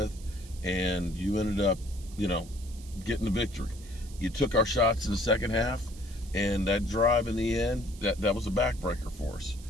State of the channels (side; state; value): right; noise; hiss, 20 dB below the sound